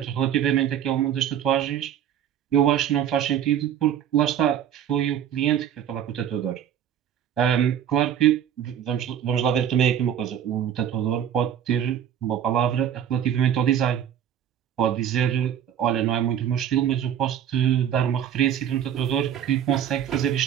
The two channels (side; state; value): left; quieter; 9.7 dB